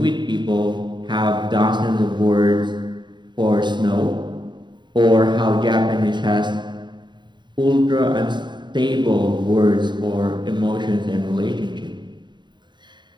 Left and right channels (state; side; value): late; left; 0.22 ms